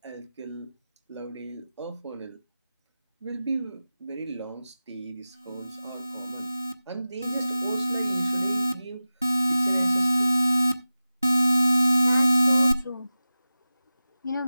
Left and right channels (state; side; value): inverted; both; correlation -0.94